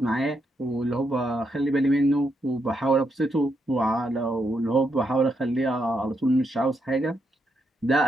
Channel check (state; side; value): normal; both; correlation 0.80